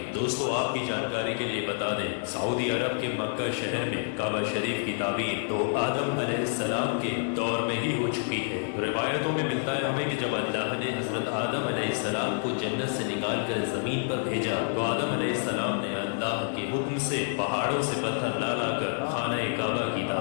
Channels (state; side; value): silent; right; 57 dB below the other